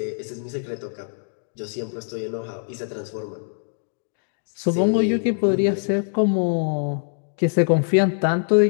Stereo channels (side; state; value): right; silent; digital silence